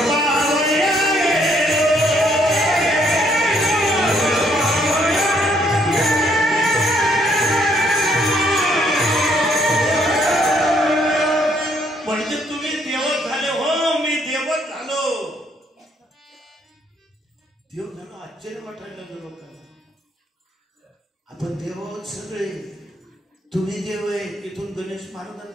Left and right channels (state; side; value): normal; both; correlation 0.69